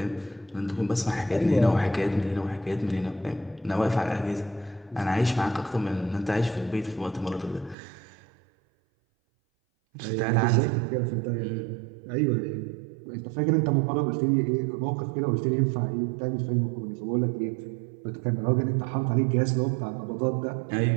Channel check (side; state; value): left; drops out; at 7.8 s